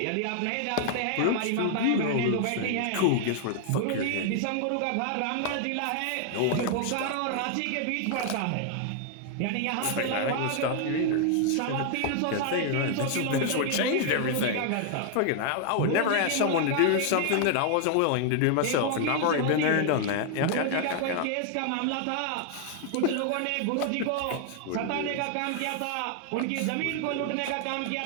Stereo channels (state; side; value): different; both; correlation 0.00